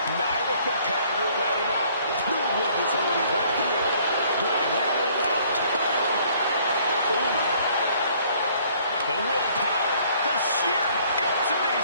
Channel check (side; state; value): both; inverted; correlation -0.60